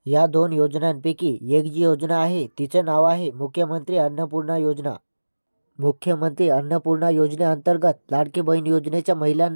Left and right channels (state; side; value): inverted; both; correlation -1.00